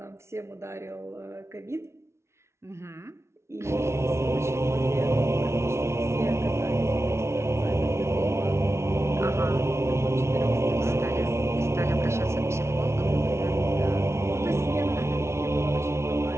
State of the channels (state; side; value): late; left; 0.13 ms